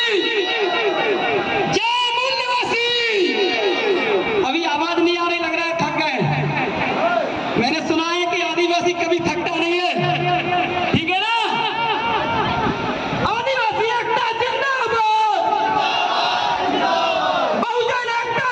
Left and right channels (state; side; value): identical; both; correlation 1.00